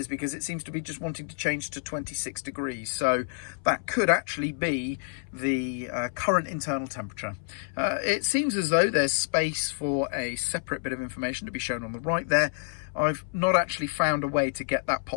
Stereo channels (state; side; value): silent; right; 58 dB below the other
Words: because it seems to be just wanting to change to 26 degrees, so that could actually be the current internal temperature. It seems as though there's space for a separate bit of information to be shown on the right there. I've not actually found a way to get that